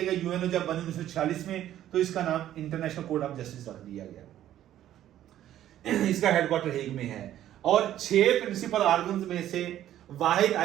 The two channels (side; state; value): left; quieter; 12.2 dB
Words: गया यूएनओ जब बनी 1946 में, तो इसका नाम इंटरनेशनल कोर्ट ऑफ जस्टिस रख दिया गया। इसका हेडक्वार्टर हेग में है। और 6 प्रिंसिपल ऑर्गन्स में से वाहिद